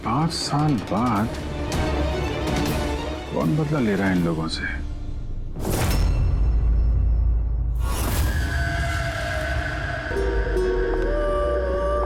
5 साल बाद कौन बदला ले रहा है इन लोगों से?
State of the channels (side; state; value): both; identical; correlation 1.00